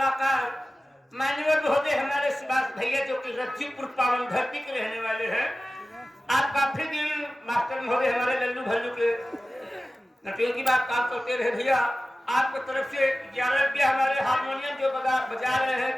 मान्यवर महोदय हमारे सुभाष भैया जो कि रज्जूपुर पावन धरती के रहने वाले हैं। आप काफी दिन मास्टर महोदय हमारे लल्लू भल्लू के नटियों की बात काम करते रहे भैया। आपकी तरफ से 11 रुपया हमारे हारमोनियम जो बजा रहे हैं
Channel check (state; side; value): normal; both; correlation 0.96